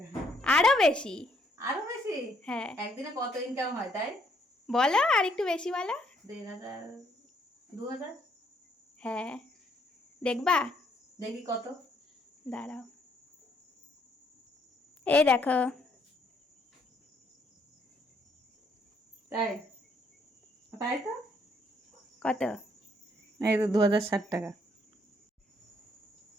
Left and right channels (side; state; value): both; normal; correlation 0.69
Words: আরো বেশি। আরো বেশি? হ্যাঁ। একদিনে কত ইনকাম হয় তাই? বলো আর একটু বেশি বলো। 1500, 2000? হ্যাঁ। দেখবা? দেখি কত। দাঁড়াও, এই দেখো। তাই? তাই তো। কত? এই তো 2060 টাকা।